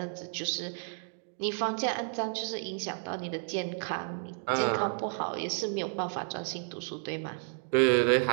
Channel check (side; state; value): left; silent; digital silence